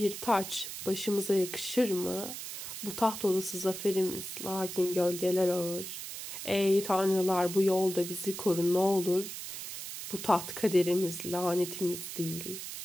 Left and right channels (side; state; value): right; noise; hiss, 8 dB below the sound